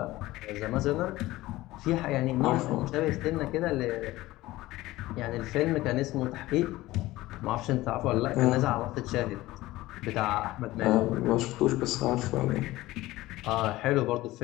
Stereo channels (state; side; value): quieter; right; 17.7 dB